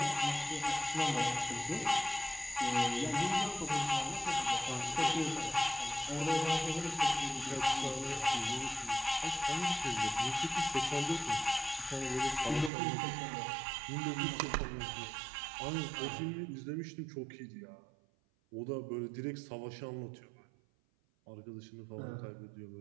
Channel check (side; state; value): left; drops out; at 12.7 s